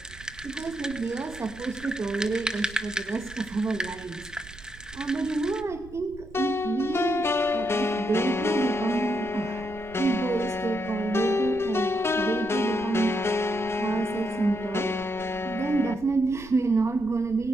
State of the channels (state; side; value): noise; right; rumble, 19 dB below the sound